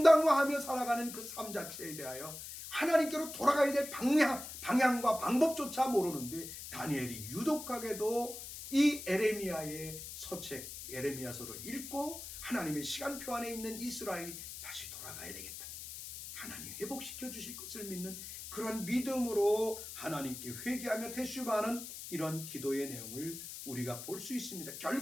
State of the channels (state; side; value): noise; left; hiss, 10 dB below the sound